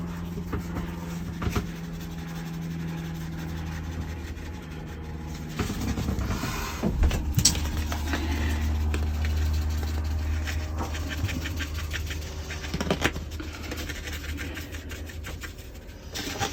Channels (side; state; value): both; identical; correlation 1.00